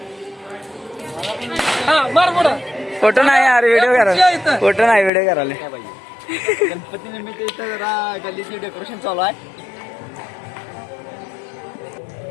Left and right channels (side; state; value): right; drops out; at 5.1 s